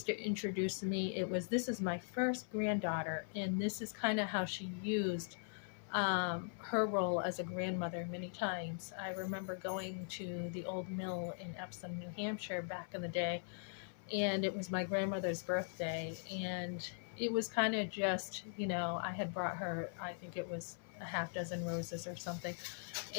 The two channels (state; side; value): silent; right; 51 dB below the other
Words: to introduce me, this is my first granddaughter. And this is kind of how she used her role as a grandmother many times. I remember going to the old mill in Epsom, New Hampshire back in the day, and it was my grandmother's birthday, and it was kind of just, I had brought her, I think it was a half dozen roses or something,